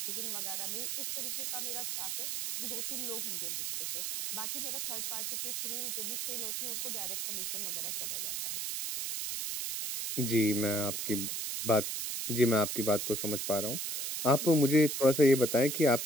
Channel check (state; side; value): noise; right; hiss, 2 dB below the sound